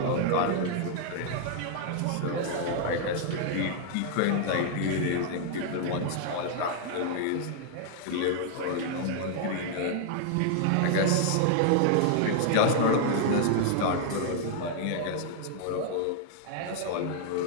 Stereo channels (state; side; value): different; both; correlation 0.00